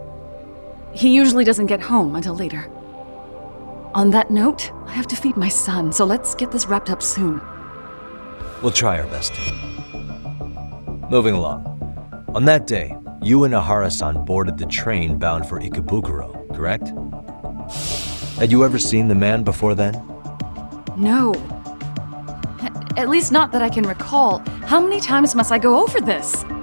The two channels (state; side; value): inverted; both; correlation -1.00